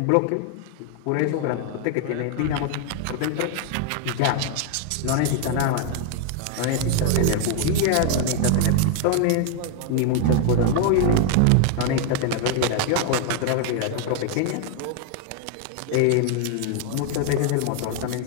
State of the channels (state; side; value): different; both; correlation 0.00